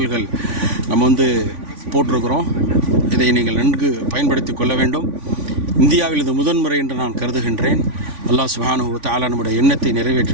நம்ம போட்டிருக்கிறோம். இதை நீங்கள் நன்கு பயன்படுத்தி கொள்ள வேண்டும். இந்தியாவில் இது முதன்முறை என்று நான் கருதுகின்றேன். அல்லாஹ் சுப்ஹானஹு வ தஆலா நம்முடைய எண்ணத்தை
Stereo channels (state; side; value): late; left; 3.5 ms